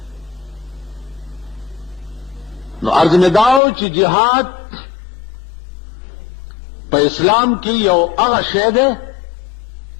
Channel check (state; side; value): drops out; right; at 3.6 s